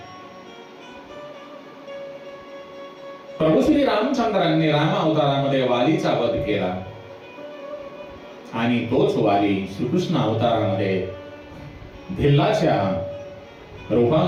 प्रभू श्री रामचंद्रांनी राम अवतारामध्ये वालीचा वध केला आणि तोच वाली श्रीकृष्ण अवतारामध्ये भिल्लाच्या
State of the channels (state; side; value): identical; both; correlation 1.00